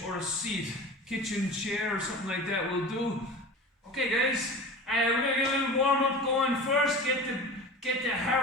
or a seat, kitchen chair or something like that will do. Okay guys, we're going to get a little warm up going first, get the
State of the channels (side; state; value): both; normal; correlation 0.34